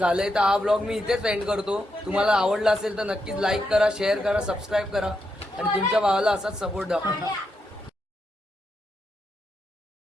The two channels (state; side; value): normal; both; correlation 0.83